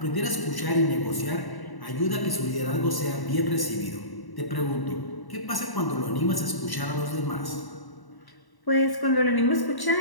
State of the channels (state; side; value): late; right; 1.1 ms